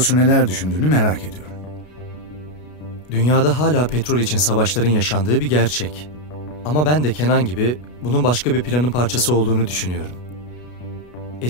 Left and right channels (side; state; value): right; late; 33 ms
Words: neler düşündüğünü merak ediyorum. Dünyada hala petrol için savaşların yaşandığı bir gerçek. Ama ben de Kenan gibi bunun başka bir planın parçası olduğunu düşünüyorum.